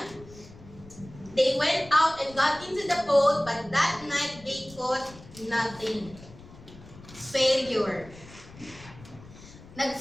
They went out and got into the boat, but that night they caught nothing. Failure.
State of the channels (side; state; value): left; noise; rumble, 19 dB below the sound